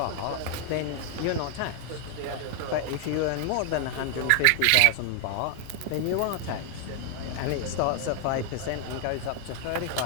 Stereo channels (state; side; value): different; both; correlation 0.00